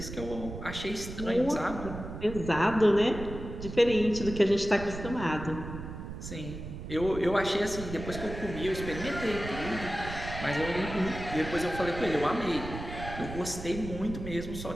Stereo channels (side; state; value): right; noise; rumble, 9 dB below the sound